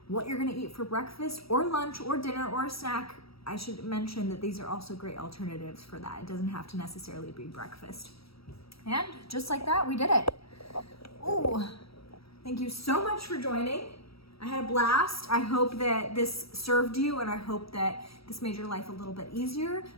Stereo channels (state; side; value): late; right; 0.76 ms